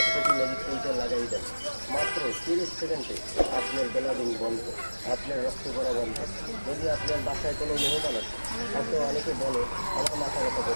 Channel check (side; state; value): both; inverted; correlation -1.00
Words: কোটি ম্যাজিক তেলটা লাগাই দেন। মাত্র 30 সেকেন্ডে আপনার বেলাদিন বন্ধ, আপনার রক্ত পড়া বন্ধ। যদি আপনার বাসায় কোনো মেহমান আছে, হয়তো অনেকে বলে আমার মাথা ব্যথা